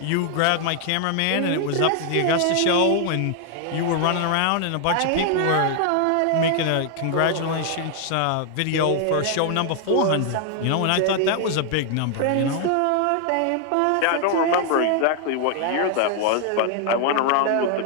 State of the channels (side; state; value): both; different; correlation 0.00